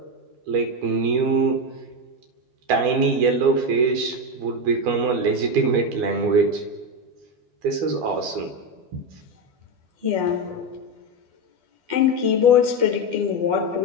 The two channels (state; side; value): late; left; 12 ms